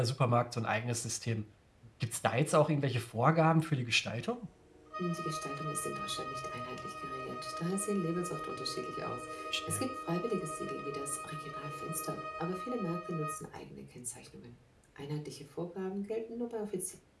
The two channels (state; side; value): identical; both; correlation 1.00